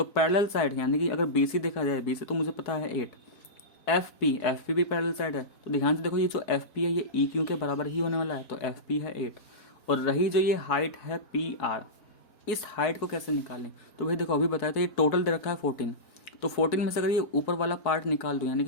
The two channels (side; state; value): right; late; 4.7 ms